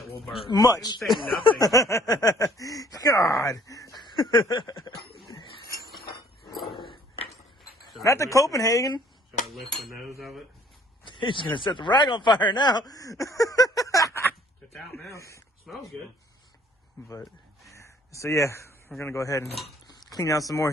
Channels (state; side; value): normal; both; correlation 0.58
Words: will burn. Much. He didn't say nothing. God. Not the Copenhagen. Should I lift the nose of it? He's gonna set the rag on fire now. It's out now. Smells good. But so yeah, we're gonna go ahead and clean out some more.